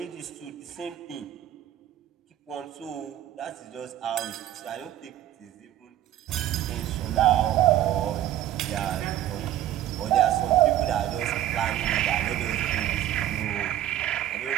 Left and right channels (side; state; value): left; quieter; 12.4 dB